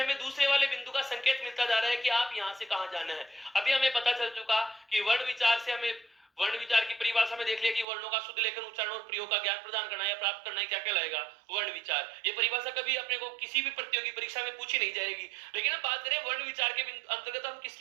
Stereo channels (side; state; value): left; drops out; at 7.9 s